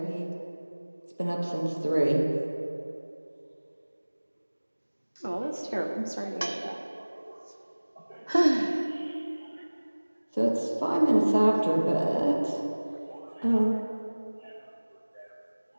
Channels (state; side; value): inverted; both; correlation -1.00